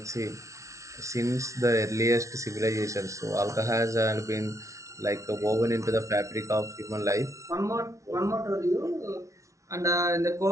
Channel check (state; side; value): late; left; 0.15 ms